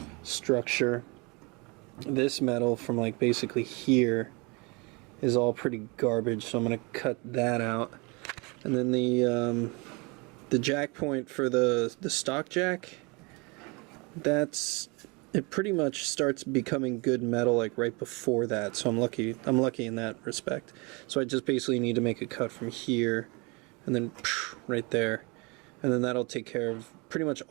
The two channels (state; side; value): quieter; left; 28.8 dB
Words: structure. This metal from like basically here is all pretty garbage, so I'm gonna cut that out. And then the jack point for the stock jack, it pretty much starts becoming good metal like right before that, so I'm lucky in that respect. So I just basically need to make a cut from here and then right there, and then that'll take care of pretty much